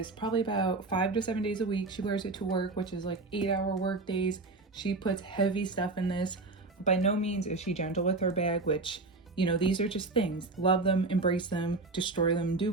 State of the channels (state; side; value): quieter; left; 3.5 dB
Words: probably about 5 to 7 days a week. She wears it to work, which is like 8-hour work days. She puts heavy stuff in this. By no means is she gentle with her bag, which, you know, these are just things. Love them, embrace them, destroy them, do